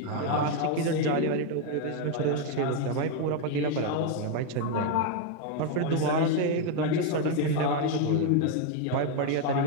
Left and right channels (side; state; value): both; different; correlation 0.01